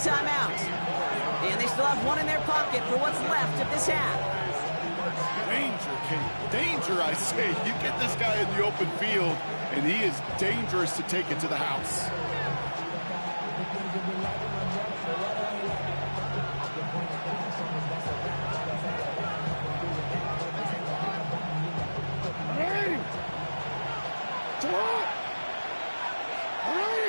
And they still have one in their pocket for what's left of this half. Danger, Kate. Danger, I say. You get this guy in the open field, and he is dangerous to take it to the house.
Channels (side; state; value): both; inverted; correlation -1.00